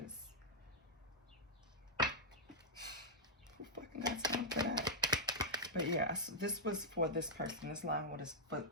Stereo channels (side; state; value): both; normal; correlation -0.07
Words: who fucking got time for that? But yeah, this was for this person. This line was for,